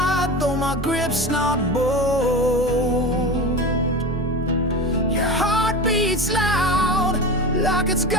though my grip's not bold. Your heart beats loud, like it's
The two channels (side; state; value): both; normal; correlation 0.28